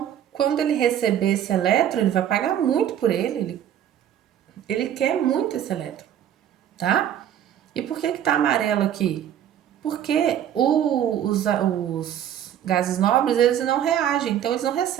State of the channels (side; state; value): left; quieter; 10.3 dB